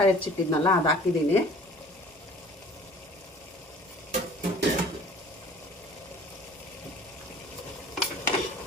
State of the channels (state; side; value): normal; both; correlation 0.48